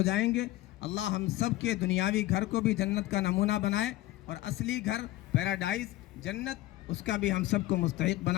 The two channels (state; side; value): quieter; right; 16.5 dB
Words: جائیں گے۔ اللہ ہم سب کے دنیاوی گھر کو بھی جنت کا نمونہ بنائے، اور اصلی گھر پیراڈائز، جنت، اس کا بھی ہم سب کو مستحق